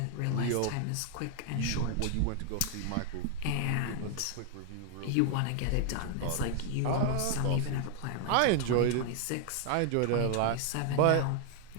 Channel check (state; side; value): different; both; correlation 0.00